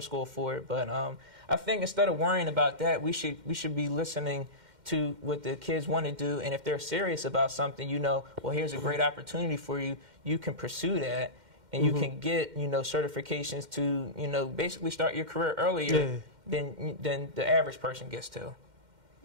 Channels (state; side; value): late; left; 2.1 ms